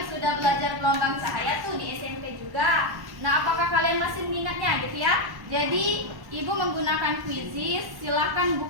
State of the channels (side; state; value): left; late; 1.1 ms